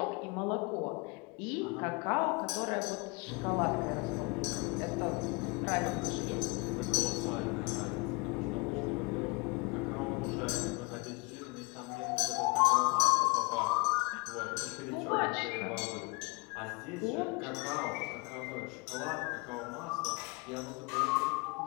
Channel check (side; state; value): right; quieter; 28.8 dB